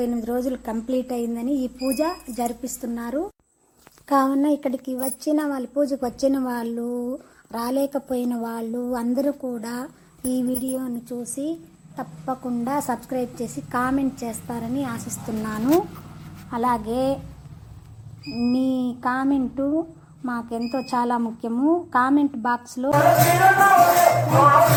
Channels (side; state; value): both; identical; correlation 1.00